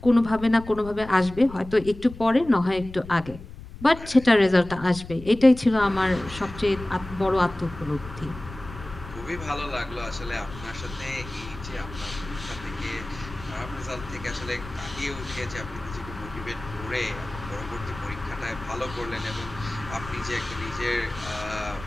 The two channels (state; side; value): noise; left; rumble, 14 dB below the sound